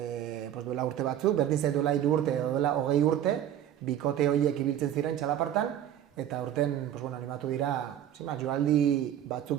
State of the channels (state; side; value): quieter; left; 10.8 dB